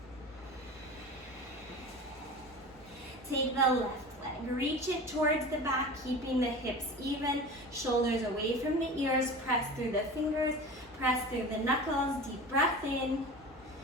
Take the left leg, reach it towards the back, keeping the hips even, shoulders away from the ears, press through the fingers, press through the knuckles, deep breath in,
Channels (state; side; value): normal; both; correlation 0.34